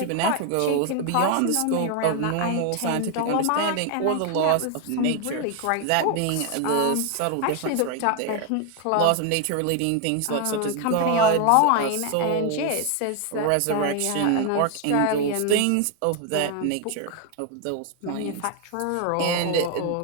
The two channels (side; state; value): both; different; correlation 0.01